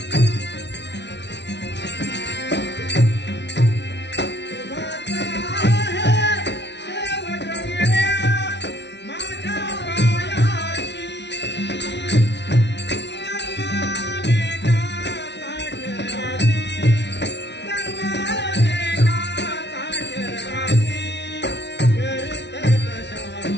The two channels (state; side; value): late; right; 0.50 ms